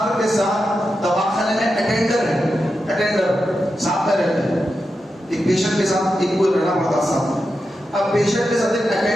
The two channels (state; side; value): normal; both; correlation 0.89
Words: کے ساتھ دواخانے میں اٹینڈر ہے، اٹینڈر ساتھ میں رہتے ہیں، ایک پیشنٹ کے ساتھ ایک کوئی رہنا پڑتا ساتھ میں، اب پیشنٹ کے ساتھ ایک